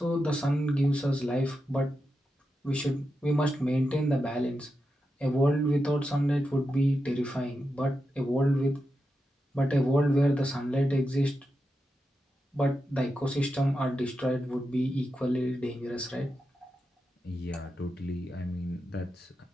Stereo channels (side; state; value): both; normal; correlation 0.88